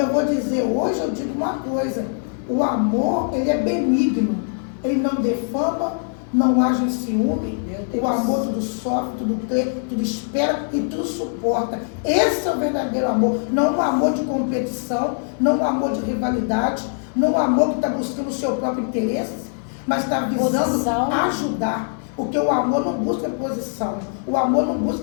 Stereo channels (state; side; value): silent; right; 64 dB below the other